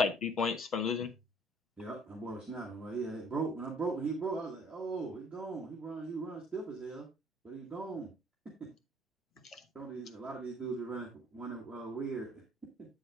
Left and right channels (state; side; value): normal; both; correlation 0.57